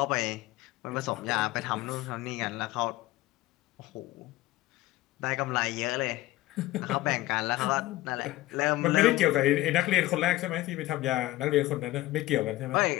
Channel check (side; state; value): right; quieter; 17.1 dB